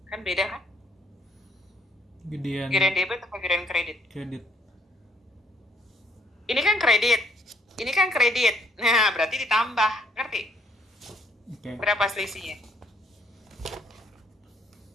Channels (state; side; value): normal; both; correlation 0.67